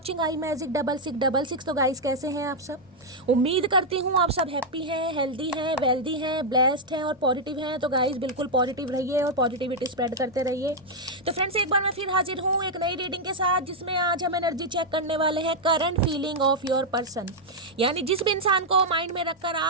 I magic 6666। तो गाइस कैसे हैं आप सब? उम्मीद करती हूँ आप सब हैप्पी हैं, हेल्दी हैं, वेल्दी हैं, ब्लेस्ड हैं और पॉजिटिव हैं। तो गाइस बिल्कुल पॉजिटिव रहिए और पॉजिटिविटी स्प्रेड करते रहिए। तो फ्रेंड्स एक बार मैं फिर हाजिर हूँ एक नई रीडिंग के साथ, जिसमें आज हम एनर्जी चेक करने वाले हैं current feeling of your person. यानी जिस भी इंसान को माइंड में रखकर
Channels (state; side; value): normal; both; correlation -0.02